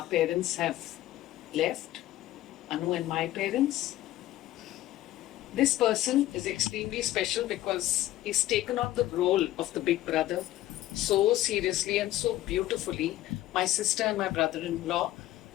parents have left, Anu and my parents, this person is extremely special because he's taken on the role of the big brother so seriously and so beautifully. My sister and my brother-in-law,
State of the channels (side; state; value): right; quieter; 14.7 dB